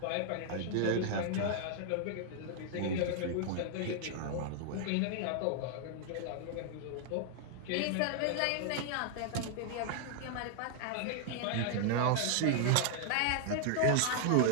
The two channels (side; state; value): both; different; correlation 0.00